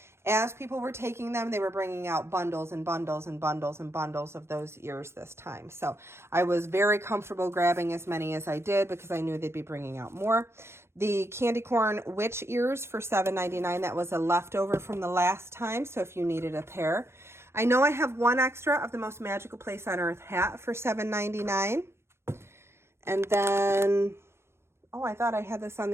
As people were taking them, they were bringing out bundles and bundles and bundles and bundles of those ears this time. So I was very comfortable grabbing as many as I did because I knew they'd be bringing out more. The candy corn witch ears for $7.99. That was a leftover from the last time, so if you needed a pair. I know I have one extra of the Most Magical Place on Earth hat for $7.99. And then... oh, I thought I had this on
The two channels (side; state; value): left; late; 0.12 ms